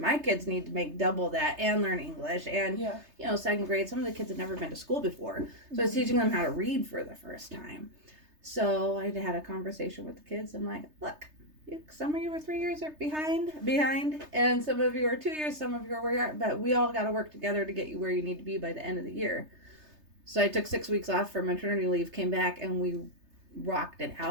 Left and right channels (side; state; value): left; late; 3.3 ms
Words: kids need to make double that and learn English. And, you know, second grade, some of the kids had never been to school before. So I was teaching them how to read for the first time. So I had a conversation with the kids. I'm like, look, some of you were 3 years behind, and some of you are 2 years, some of you are where you are, but we all got to work together to get you where you need to be by the end of the year. So I took 6 weeks off for maternity leave, came back, and we rocked it